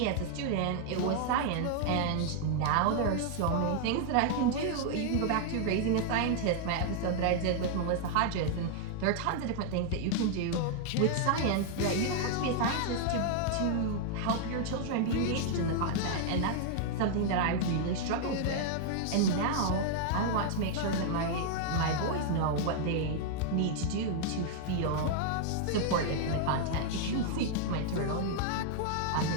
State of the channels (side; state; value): both; different; correlation 0.00